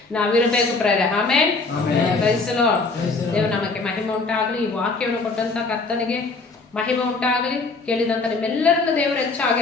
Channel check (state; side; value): quieter; right; 3.9 dB